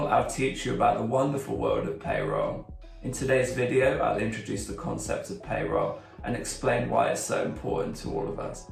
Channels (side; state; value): both; identical; correlation 1.00